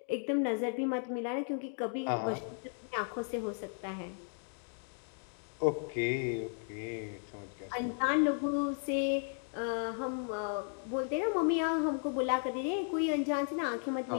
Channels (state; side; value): silent; right; 54 dB below the other